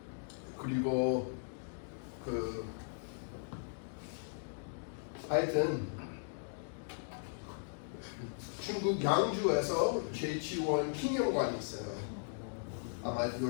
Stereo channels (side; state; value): right; silent; digital silence